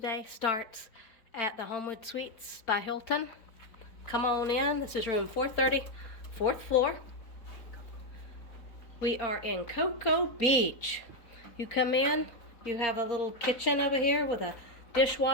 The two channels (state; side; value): late; right; 4.4 ms